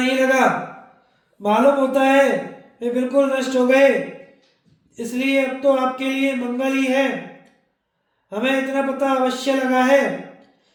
लगा। मालूम होता है वे बिल्कुल नष्ट हो गए। इसलिए अब तो आपके लिए मंगल ही है। हमें इतना पता अवश्य लगा है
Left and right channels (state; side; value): identical; both; correlation 1.00